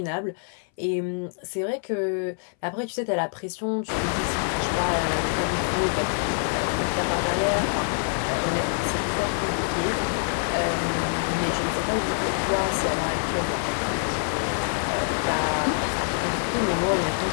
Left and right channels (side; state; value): right; silent; 61 dB below the other